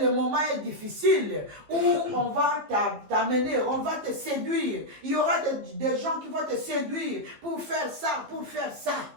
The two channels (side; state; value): left; late; 15 ms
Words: le moment est difficile où on va t'amener, on va te séduire. Il y aura des gens qui vont te séduire pour faire ça, pour faire ça.